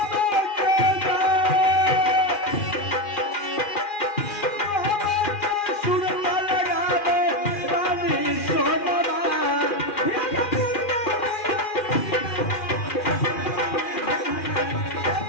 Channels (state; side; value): late; right; 2.4 ms